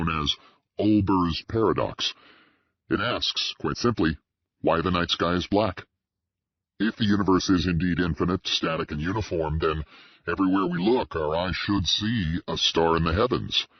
as Olber's paradox. It asks, quite simply, why the night sky is black. If the universe is indeed infinite, static, and uniform, then everywhere we look, our eyes should see a star in the heavens.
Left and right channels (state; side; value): identical; both; correlation 1.00